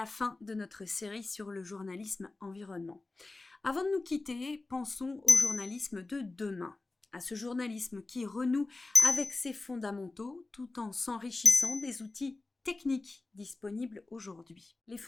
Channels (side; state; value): right; quieter; 3.3 dB